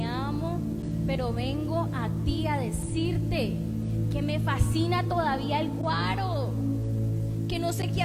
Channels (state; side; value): identical; both; correlation 1.00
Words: amo, pero vengo a ti a decirte que me fascina todavía el guaro, que no sé qué